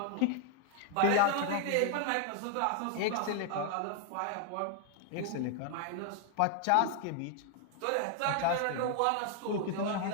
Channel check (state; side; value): different; both; correlation 0.00